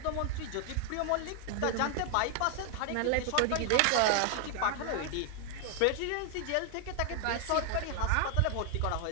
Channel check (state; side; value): different; both; correlation 0.01